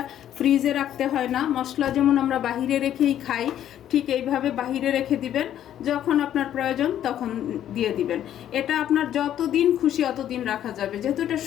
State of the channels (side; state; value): right; quieter; 11.0 dB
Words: ফ্রিজে রাখতে হয় না। মশলা যেমন আমরা বাহিরে রেখেই খাই, ঠিক এইভাবে বাহিরে রেখে দিবেন, যখন আপনার প্রয়োজন তখন দিয়ে দিবেন। এটা আপনার যতদিন খুশি অতদিন রাখা যাবে, যেহেতু এটা